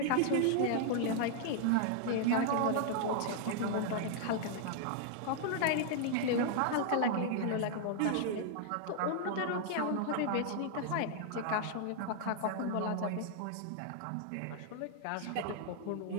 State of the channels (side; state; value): both; different; correlation 0.00